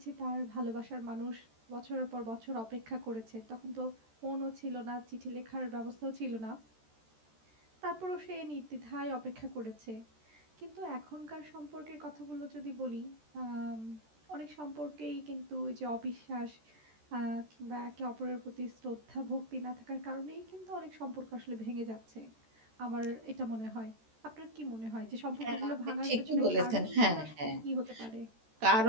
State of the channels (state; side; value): late; left; 13 ms